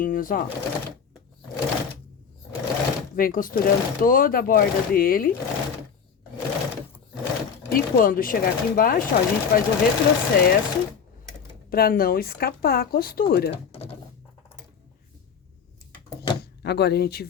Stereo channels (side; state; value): right; quieter; 6.8 dB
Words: ó. Vem costurando toda a borda dele. E quando chegar aqui embaixo, ó, a gente faz o retrocesso pra não escapar a costura. Agora, a gente